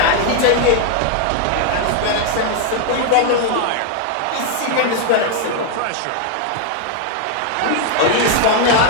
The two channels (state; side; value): different; both; correlation 0.00